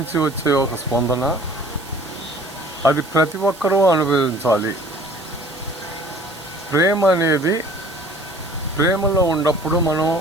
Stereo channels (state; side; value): noise; right; hiss, 19 dB below the sound